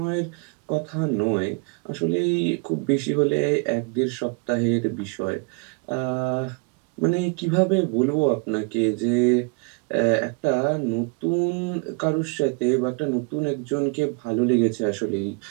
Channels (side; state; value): left; quieter; 33.7 dB